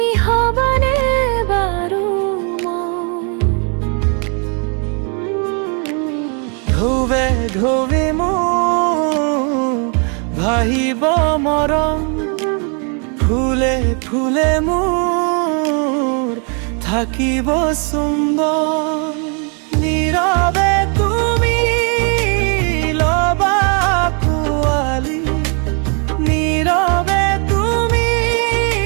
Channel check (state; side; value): quieter; left; 37.8 dB